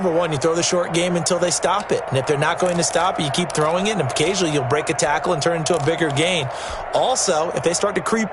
one, you throw the short game until they stop it. And if they're not going to stop it, you keep throwing it, and occasionally you'll break a tackle and turn into a bigger gain. Also, if they start to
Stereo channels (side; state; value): both; identical; correlation 1.00